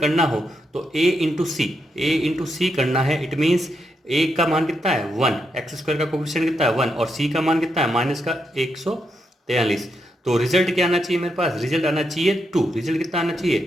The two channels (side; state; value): both; normal; correlation 0.81